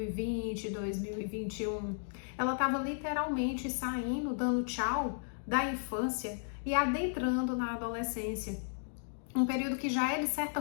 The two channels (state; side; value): silent; right; digital silence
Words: 2021. Ela estava literalmente saindo, dando tchau da infância e adentrando na adolescência. Um período que já é, de certa